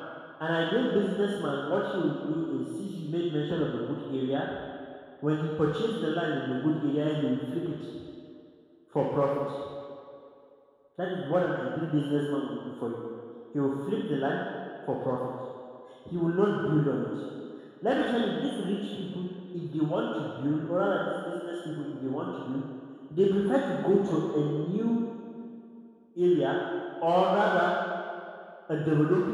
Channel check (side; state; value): both; identical; correlation 1.00